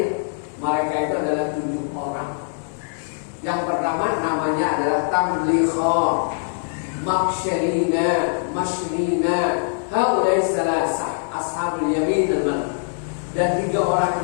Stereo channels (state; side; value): silent; right; digital silence